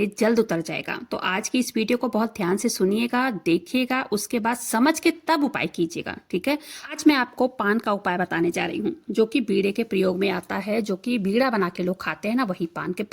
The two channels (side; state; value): both; identical; correlation 1.00